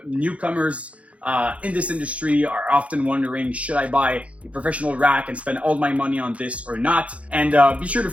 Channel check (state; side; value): late; left; 0.064 ms